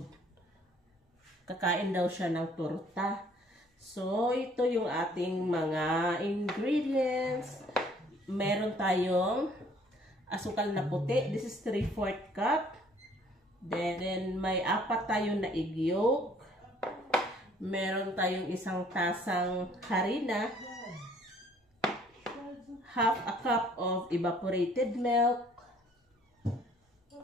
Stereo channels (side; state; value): both; normal; correlation 0.59